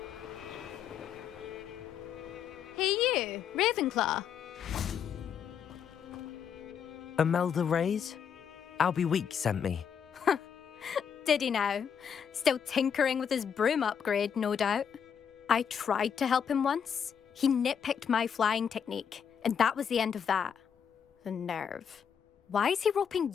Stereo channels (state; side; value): quieter; right; 7.6 dB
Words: Ravenclaw. Imelda Reyes? Albie Week sent me. Did he now? Still tinkering with his broom upgrade, no doubt. I tried to help him once. He nitpicked my flying technique, and that was the end of that. The nerve. Why is he roping